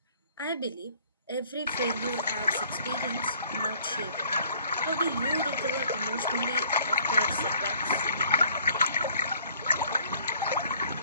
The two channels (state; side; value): inverted; both; correlation -0.59